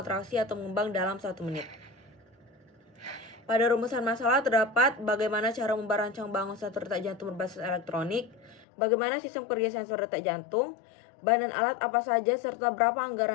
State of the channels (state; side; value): drops out; right; at 8.7 s